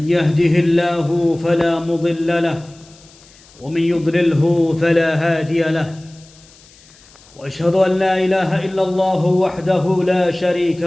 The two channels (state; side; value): noise; left; hiss, 26 dB below the sound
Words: يهده الله فلا مضل له ومن يضلله فلا هادي له وأشهد أن لا إله إلا الله وحده لا شريك